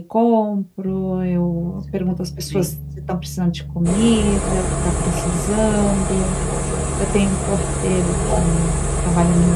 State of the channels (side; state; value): both; identical; correlation 1.00